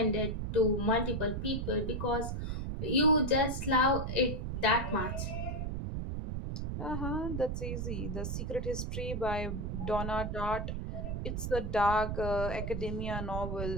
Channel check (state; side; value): noise; right; rumble, 3 dB below the sound